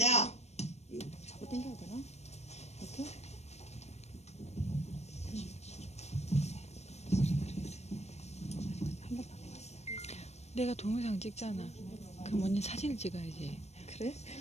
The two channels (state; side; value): late; right; 0.32 ms